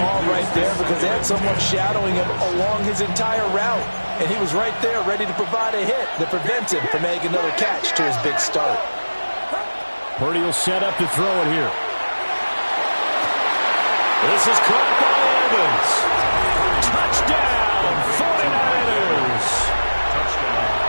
right there, because they had someone shadowing him along his entire route. And he was right there ready to provide a hit that prevents him from making another catch to his big start. Purdy will set up to throw it here. This is caught by Evans. Touchdown, 49ers.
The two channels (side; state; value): both; inverted; correlation -1.00